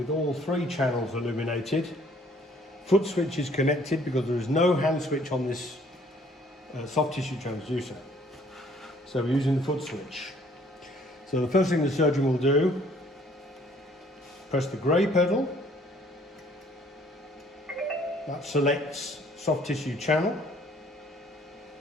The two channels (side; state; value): both; normal; correlation 0.60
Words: all 3 channels illuminated. Foot switch is connected because there is no hand switch on this soft tissue transducer. So we're using the foot switch. So the first thing the surgeon will do, press the grey pedal. That selects soft tissue channel.